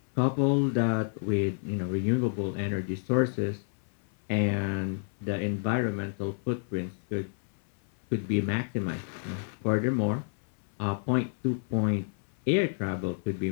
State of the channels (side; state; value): right; silent; 58 dB below the other